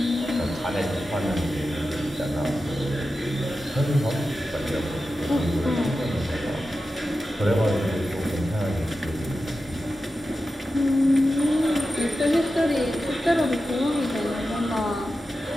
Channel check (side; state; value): both; normal; correlation 0.92